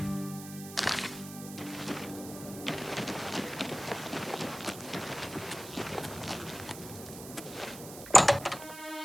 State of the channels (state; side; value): noise; right; hiss, 13 dB below the sound